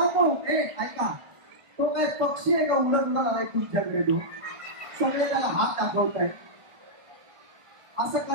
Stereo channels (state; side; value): late; left; 1.5 ms